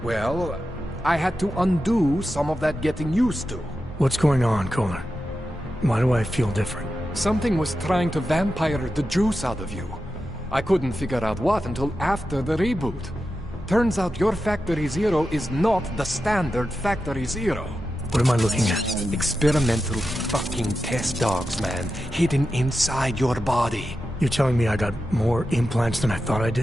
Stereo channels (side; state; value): both; normal; correlation 0.91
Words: Well, I had to undo some of that getting used to. What's going on, Kohler? Why do I feel different? Something was trying to vampire the juice out of you. I couldn't figure out what until after the reboot. Turns out your Factory Zero is not the standard Factory Zero. What am I looking at? Experimental fucking test dogs, man. Hidden inside your body. You're telling me I got more implants than I thought I